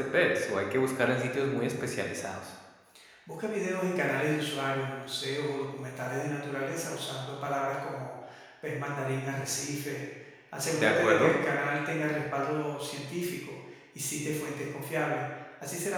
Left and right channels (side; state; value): both; identical; correlation 1.00